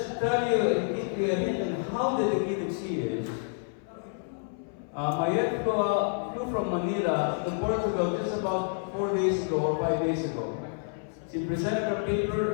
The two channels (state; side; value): silent; right; 59 dB below the other